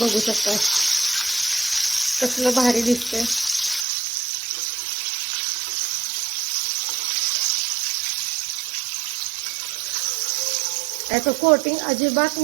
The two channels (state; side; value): drops out; left; at 3.9 s